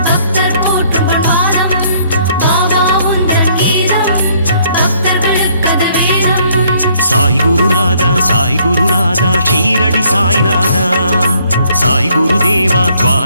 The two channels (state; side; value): inverted; both; correlation -0.65